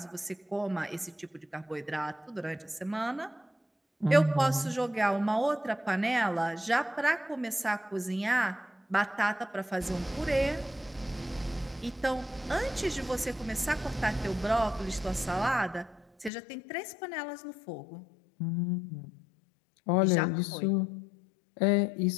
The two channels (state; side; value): drops out; right; at 16.3 s